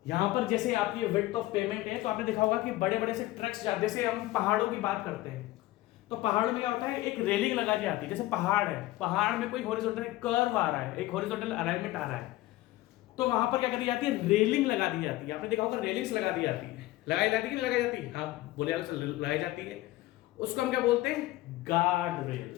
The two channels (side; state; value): right; quieter; 17.3 dB